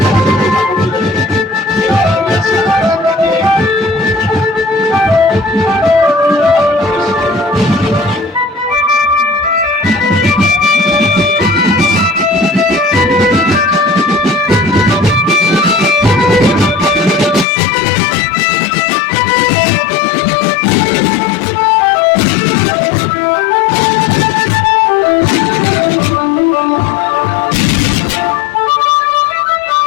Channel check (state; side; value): drops out; right; at 17.4 s